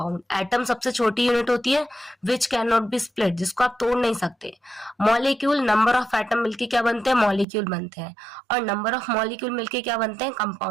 एटम सबसे छोटी यूनिट होती है which can not be split, जिसको आप तोड़ नहीं सकते। मॉलिक्यूल, नंबर ऑफ एटम मिलके क्या बनते हैं, मॉलिक्यूल बनते हैं, और नंबर ऑफ मॉलिक्यूल मिलके क्या बनते हैं,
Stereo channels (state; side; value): drops out; left; at 7.5 s